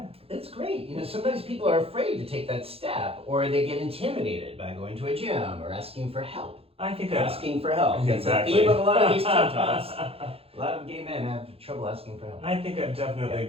That's great. Sometimes people are afraid to take that step, or they get intimidated by going to a gym or asking for help. I think asking for help. Exactly. It's the theme of a lot of these TED Talks. A lot of gay men have trouble asking for help. I think I've definitely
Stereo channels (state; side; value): late; left; 0.28 ms